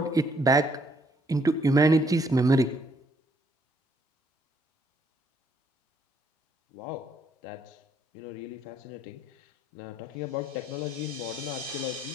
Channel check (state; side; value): normal; both; correlation 0.69